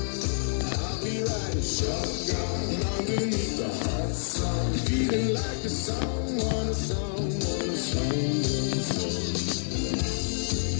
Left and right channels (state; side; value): silent; right; 59 dB below the other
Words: I'll be riding shotgun underneath the hot sun, feeling like someone, someone, someone, someone.